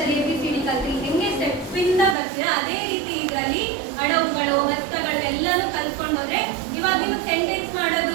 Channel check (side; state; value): left; drops out; at 2.1 s